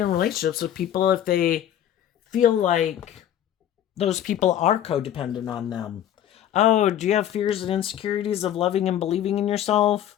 relationships with people if they feel like those people are codependent on them. Oh, do you have fears and insecurities of loving and believing in yourself?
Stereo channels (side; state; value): right; quieter; 10.9 dB